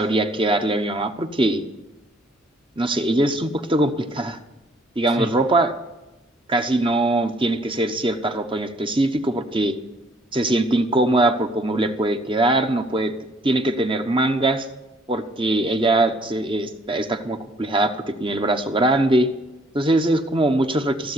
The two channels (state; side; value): normal; both; correlation 0.61